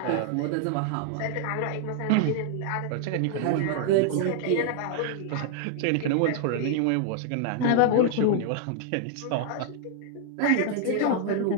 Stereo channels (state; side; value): different; both; correlation 0.00